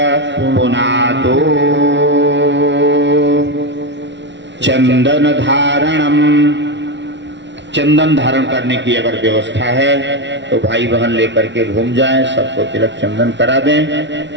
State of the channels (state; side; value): late; left; 0.52 ms